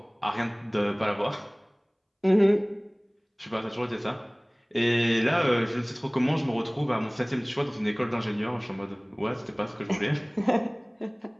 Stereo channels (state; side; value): identical; both; correlation 1.00